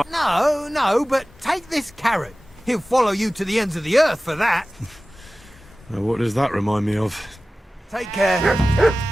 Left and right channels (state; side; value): normal; both; correlation 0.97